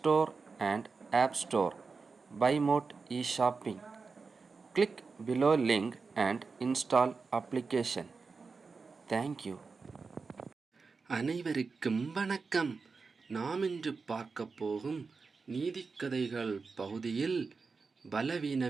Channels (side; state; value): left; quieter; 4.6 dB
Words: and App Store. BuyMote e-shopping. Click below link and install application. Thank you. அனைவருக்கும் வணக்கம். நாம் இன்று பார்க்க போகும் நீதிக்கதைகள் பகுதியில்